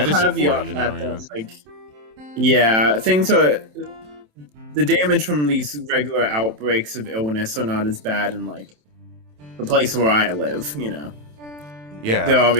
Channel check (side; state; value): left; late; 27 ms